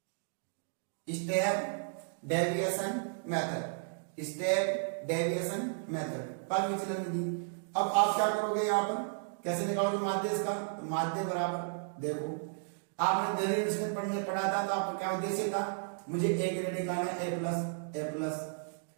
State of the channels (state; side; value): silent; left; digital silence